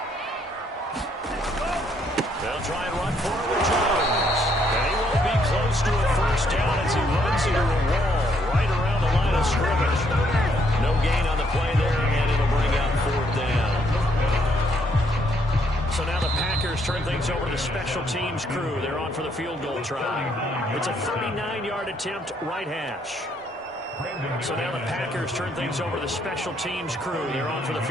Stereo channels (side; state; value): both; normal; correlation 0.70